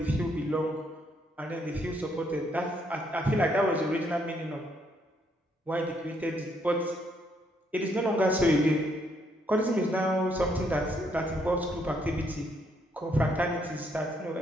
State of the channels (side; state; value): both; normal; correlation 0.72